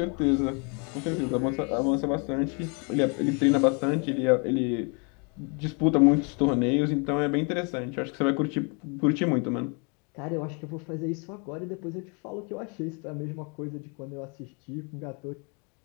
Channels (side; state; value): right; quieter; 34.7 dB